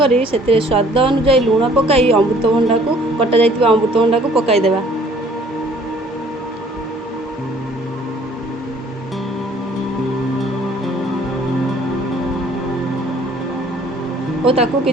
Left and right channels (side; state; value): both; normal; correlation 0.57